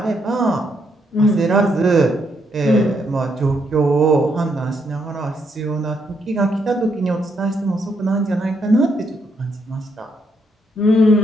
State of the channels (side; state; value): both; normal; correlation 0.76